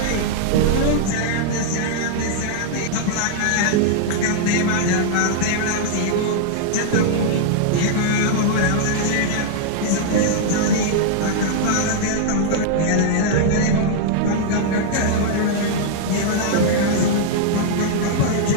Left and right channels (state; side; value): different; both; correlation -0.01